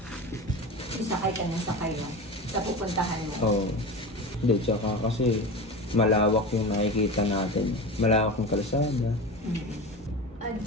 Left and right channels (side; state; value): both; normal; correlation 0.28